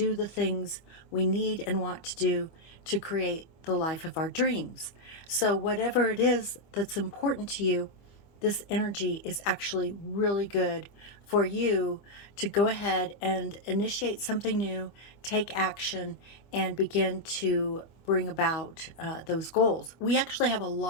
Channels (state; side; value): late; right; 25 ms